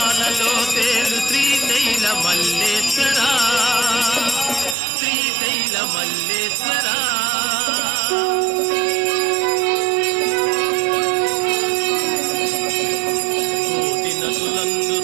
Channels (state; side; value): drops out; left; at 4.8 s